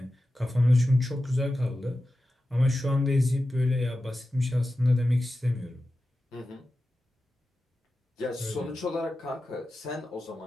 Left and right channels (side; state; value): both; normal; correlation 0.93